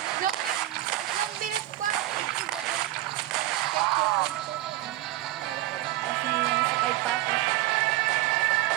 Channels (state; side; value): quieter; left; 16.3 dB